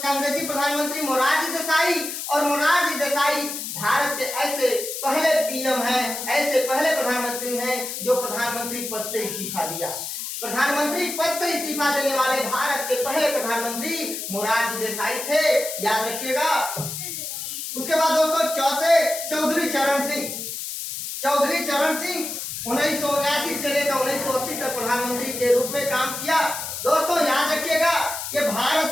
कांग्रेसी प्रधानमंत्री मोरारजी देसाई और मोरारजी देसाई भारत के ऐसे पहले पीएम हैं, ऐसे पहले प्रधानमंत्री हैं जो प्रधानमंत्री पद से इस्तीफा दिया। प्रधानमंत्री पद से इस्तीफा देने वाले भारत के पहले प्रधानमंत्री मोरारजी देसाई थे, याद रखिएगा। उसके बाद दोस्तों चौधरी चरण सिंह 1979 से लेकर 1980 तक प्रधानमंत्री के रूप में काम किया। दोस्तों याद रखिएगा, ये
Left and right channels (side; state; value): left; noise; hiss, 6 dB below the sound